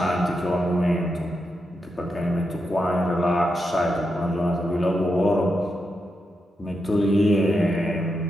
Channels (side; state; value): both; normal; correlation 0.85